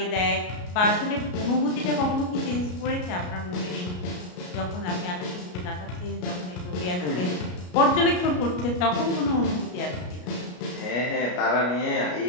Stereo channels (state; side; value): late; right; 33 ms